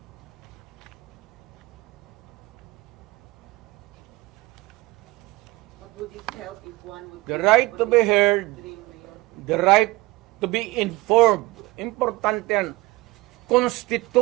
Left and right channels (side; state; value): left; quieter; 20.8 dB